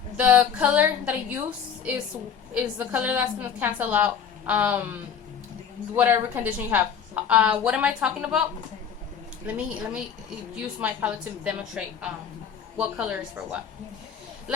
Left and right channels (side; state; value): right; quieter; 7.5 dB